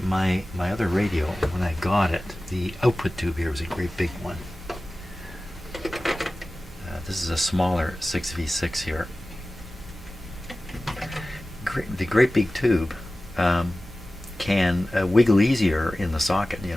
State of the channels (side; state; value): both; normal; correlation 0.96